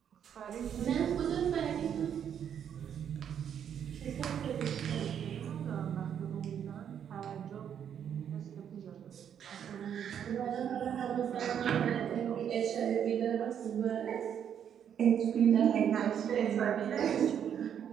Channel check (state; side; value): quieter; left; 8.8 dB